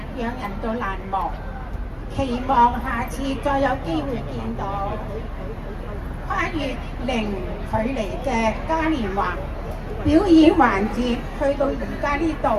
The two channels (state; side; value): identical; both; correlation 1.00